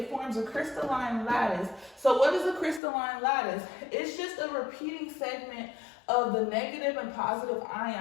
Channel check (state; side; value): drops out; right; at 2.8 s